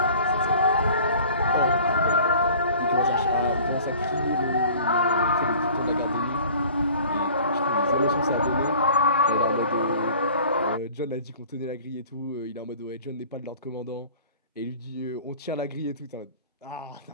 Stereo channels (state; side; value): inverted; both; correlation -0.47